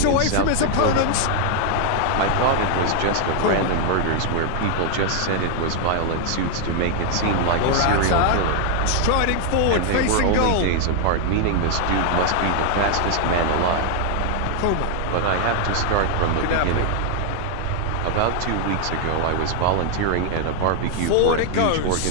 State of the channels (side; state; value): both; different; correlation 0.00